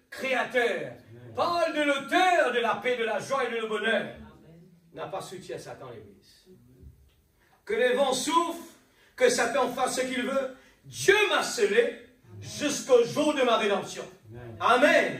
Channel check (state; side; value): identical; both; correlation 1.00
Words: Créateur. Amen. Parle de l'auteur de la paix, de la joie et de le bonheur. N'a pas soutien à Satan, l'Église. que les vents souffrent, que Satan fasse ce qu'il veut, Dieu m'a scellé jusqu'au jour de ma rédemption. Amen.